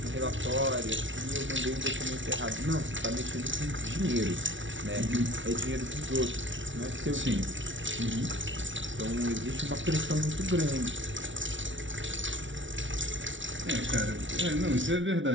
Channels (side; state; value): left; late; 0.56 ms